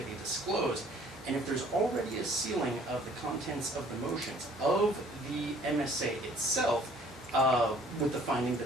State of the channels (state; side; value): normal; both; correlation 0.56